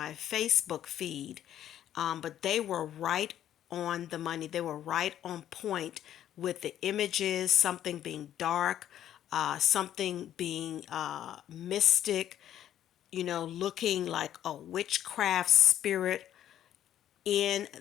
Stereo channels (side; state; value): right; quieter; 11.2 dB